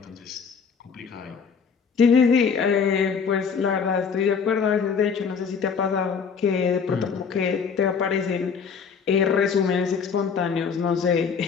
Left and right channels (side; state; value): right; quieter; 6.1 dB